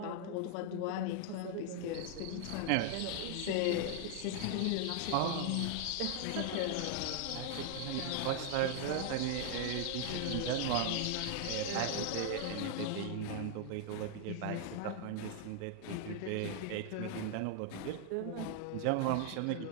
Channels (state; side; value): different; both; correlation 0.00